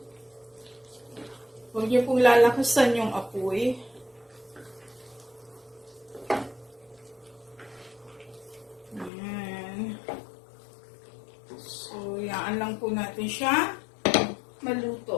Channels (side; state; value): right; drops out; at 9.1 s